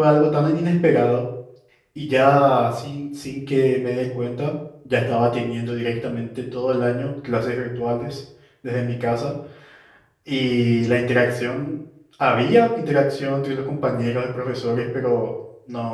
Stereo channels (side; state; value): both; identical; correlation 1.00